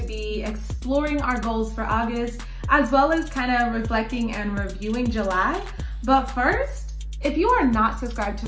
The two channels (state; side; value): identical; both; correlation 1.00